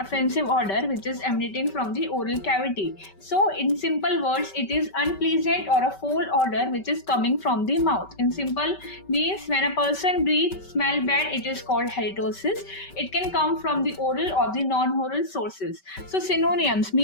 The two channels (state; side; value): late; right; 5.2 ms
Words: odor which is emanating from the oral cavity. So, in simple words, it is unpleasant or a foul odor which is coming from the mouth. In simple means when a person breathes smell bad, it is called halitosis. It can come from the oral or the non-oral sources. So, synonyms